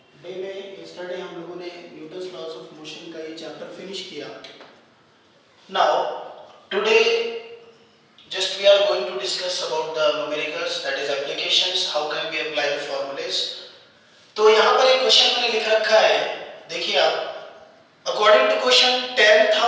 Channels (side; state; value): both; identical; correlation 1.00